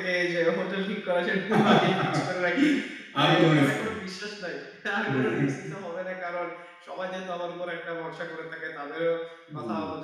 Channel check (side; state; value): both; identical; correlation 1.00